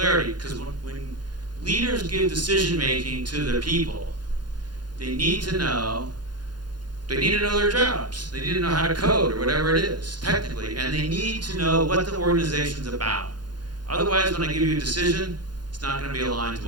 Because when leaders give decision making to their people, they need to know their jobs. They need to know how to code or whatever it is, technically. And they need to know what the organization's about. Otherwise, when I give you a decision, it's not going to be aligned to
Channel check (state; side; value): late; left; 0.71 ms